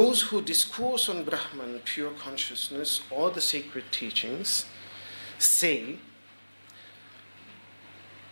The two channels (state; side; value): inverted; both; correlation -1.00